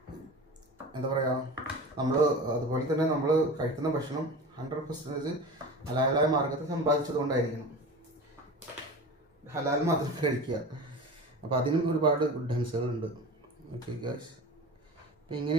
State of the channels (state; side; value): normal; both; correlation 0.33